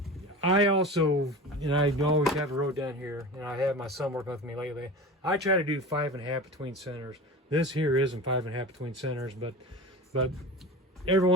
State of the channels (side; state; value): both; normal; correlation 0.32